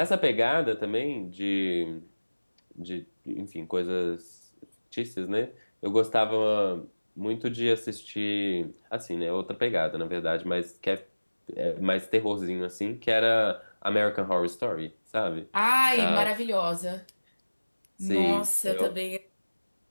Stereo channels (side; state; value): both; inverted; correlation -1.00